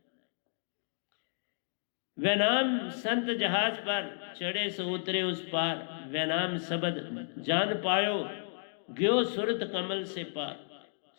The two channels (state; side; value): silent; right; digital silence